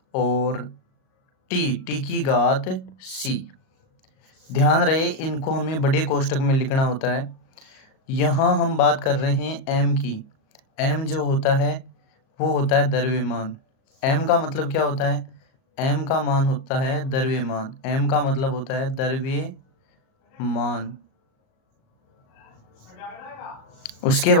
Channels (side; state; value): right; late; 37 ms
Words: और टी की घात सी। ध्यान रहे, इनको हमें बड़े कोष्टक में लिखना होता है। यहाँ हम बात कर रहे हैं एम की। एम जो होता है वो होता है द्रव्यमान। एम का मतलब क्या होता है? एम का मान होता है द्रव्यमान। एम का मतलब होता है द्रव्यमान। उसके